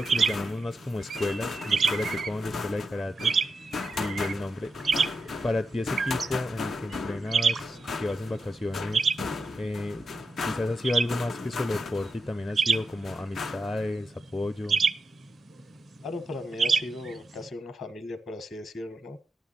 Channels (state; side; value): normal; both; correlation 0.86